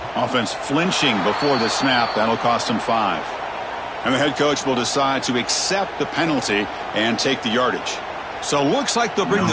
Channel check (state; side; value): identical; both; correlation 1.00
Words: Offense flinching before the snap. That'll cost them 5. And the head coach will decide to accept the penalty and take the yardage. So looks like they'll bring